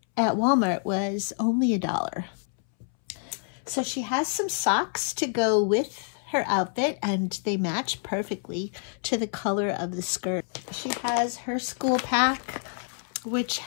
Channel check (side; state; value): right; silent; 60 dB below the other